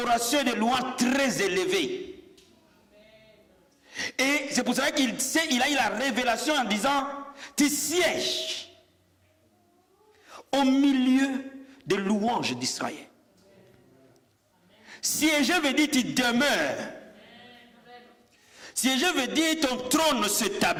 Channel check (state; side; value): identical; both; correlation 1.00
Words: et de louange très élevée. Et c'est pour ça qu'il a eu la révélation en disant, tu sièges au milieu des louanges d'Israël. Siéger veut dire tu demeures. Siéger veut dire ton trône